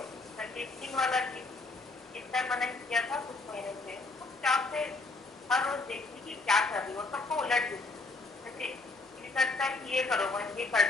कंडीशनिंग वाला चिंतन मनन किया था कुछ महीने से। चुपचाप से हर रोज देखती कि क्या कर रही हो, सबको उलट देती। जैसे ये करता है कि ये करो, ये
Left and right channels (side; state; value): right; quieter; 3.5 dB